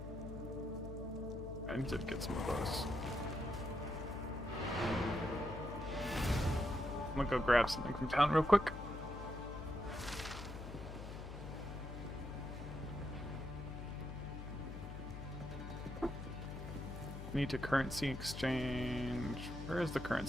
need to get some of those. I'm gonna go grab something from town real quick. need to currency exchange. Where is the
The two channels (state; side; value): noise; left; hum, 8 dB below the sound